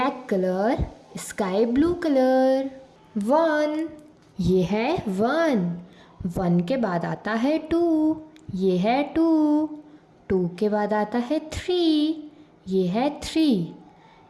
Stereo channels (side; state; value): both; identical; correlation 1.00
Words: colour, sky blue colour. 1, ये है 1। 1 के बाद आता है 2, ये है 2। 2 के बाद आता है 3, ये है 3।